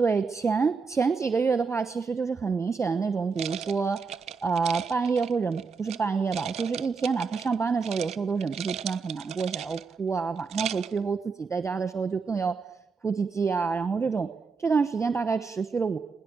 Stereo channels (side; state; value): left; quieter; 4.9 dB